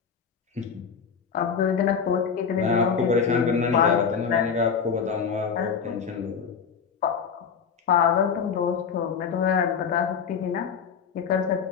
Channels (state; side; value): quieter; right; 6.5 dB